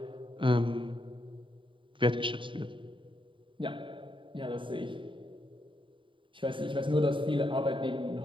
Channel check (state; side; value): late; left; 0.24 ms